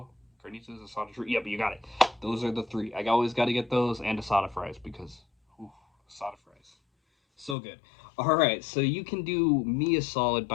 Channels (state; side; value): drops out; right; at 7.6 s